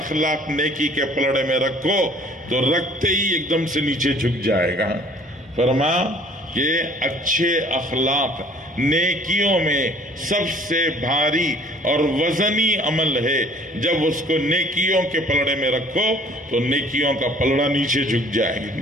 نیکی کے پلڑے میں رکھو تو رکھتے ہی ایک دم سے نیچے جھک جائے گا۔ فرمایا کہ اچھے اخلاق نیکیوں میں سب سے بھاری اور وزنی عمل ہے، جب اس کو نیکیوں کے پلڑے میں رکھو تو نیکیوں کا پلڑا نیچے جھک جائے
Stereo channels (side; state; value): both; normal; correlation 0.54